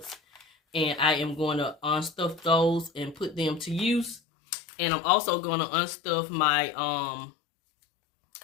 and I am going to unstuff those and put them to use. And I'm also going to unstuff my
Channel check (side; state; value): right; drops out; at 4.2 s